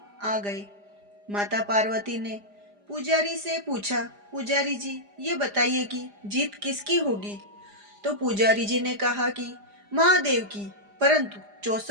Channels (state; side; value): late; left; 4.9 ms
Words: आ गए। माता पार्वती ने पुजारी से पूछा, पुजारी जी, ये बताइए कि जीत किसकी होगी? तो पुजारी जी ने कहा कि महादेव की, परंतु